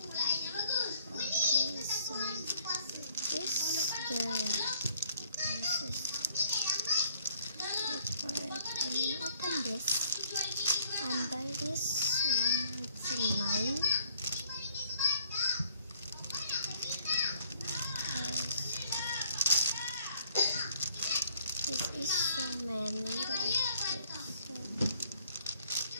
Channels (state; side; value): inverted; both; correlation -0.62